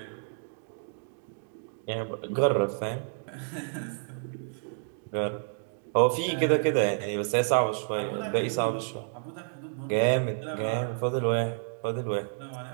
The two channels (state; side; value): silent; left; digital silence